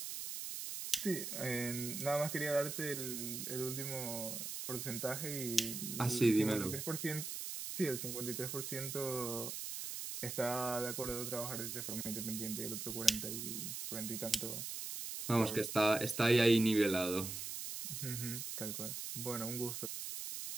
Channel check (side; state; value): right; noise; hiss, 5 dB below the sound